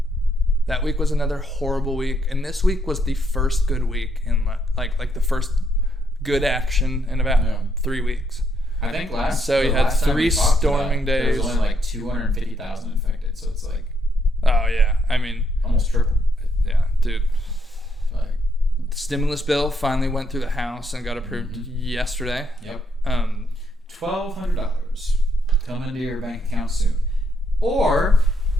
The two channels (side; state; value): both; normal; correlation 0.75